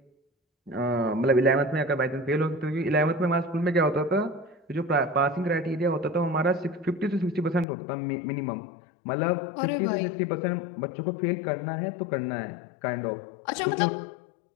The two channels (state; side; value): drops out; right; at 7.7 s